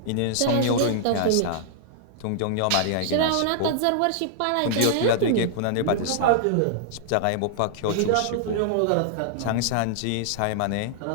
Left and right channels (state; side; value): different; both; correlation -0.01